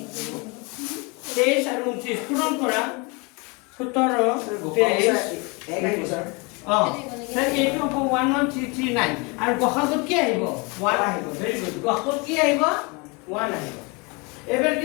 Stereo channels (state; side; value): quieter; right; 29.4 dB